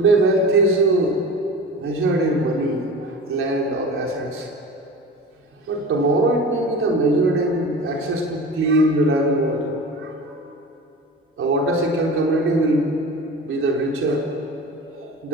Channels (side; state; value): both; normal; correlation 0.34